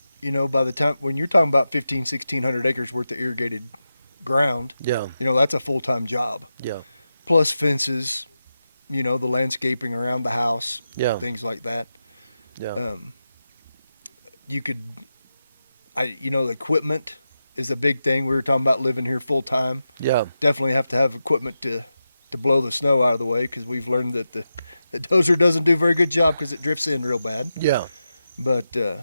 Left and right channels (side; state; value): both; inverted; correlation -0.90